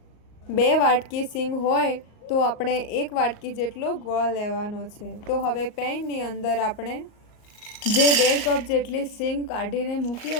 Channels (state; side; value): late; right; 38 ms